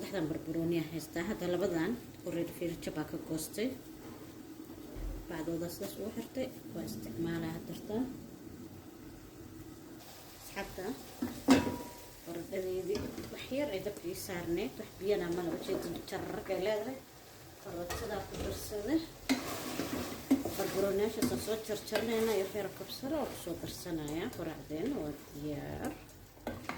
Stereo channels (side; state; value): both; identical; correlation 1.00